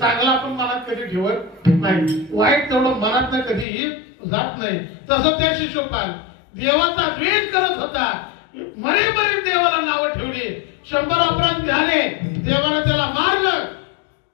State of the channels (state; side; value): drops out; right; at 3.7 s